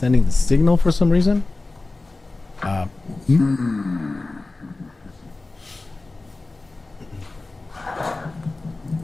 sending the signal for some reason.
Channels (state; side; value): quieter; right; 3.3 dB